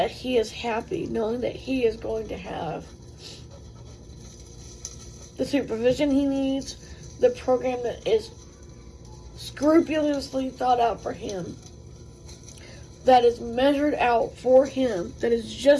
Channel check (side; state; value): both; identical; correlation 1.00